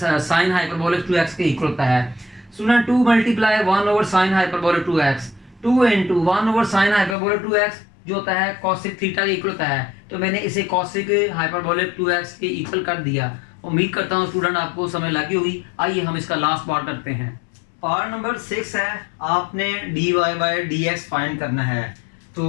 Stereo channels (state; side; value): drops out; right; at 7.2 s